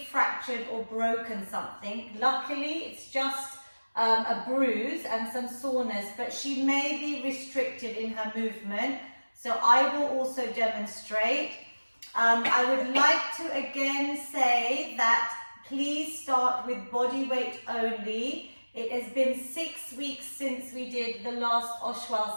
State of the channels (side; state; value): both; inverted; correlation -1.00